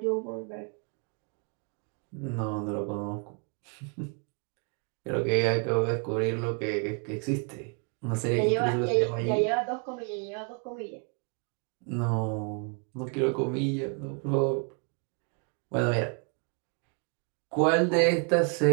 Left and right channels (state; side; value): quieter; left; 38.3 dB